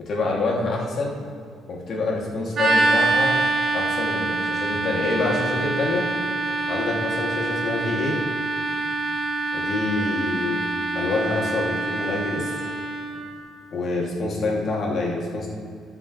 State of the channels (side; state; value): both; normal; correlation 0.76